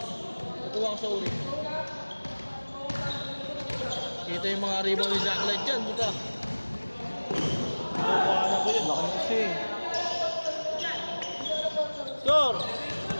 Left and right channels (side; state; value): both; inverted; correlation -1.00